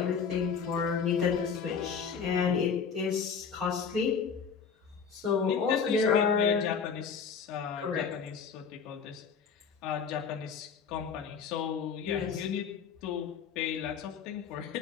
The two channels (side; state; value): right; quieter; 6.4 dB